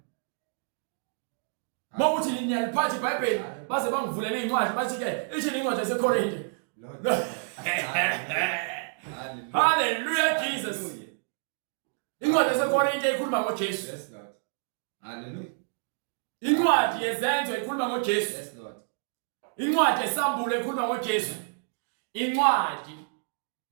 Mawuthi niyaliphatha iBhayibheli baze bangivulele incwadi bathi ke ithi incwadi yaseKorinte. Hallelujah Jesus. Incwadi yaseKorinte ikhuluma ngoJesu. Yes Lord. Hallelujah. Incwadi yezenzo ikhuluma ngoJesu. Yes Lord. Incwadi yesambulo ikhuluma ngoJesu. Incwadi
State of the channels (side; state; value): left; silent; digital silence